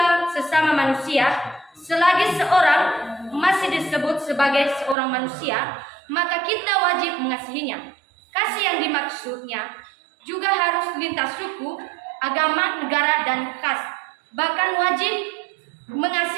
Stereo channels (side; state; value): left; drops out; at 5.0 s